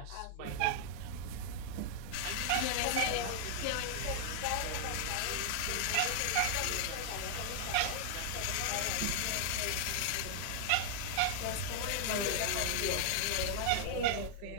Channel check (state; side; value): different; both; correlation -0.01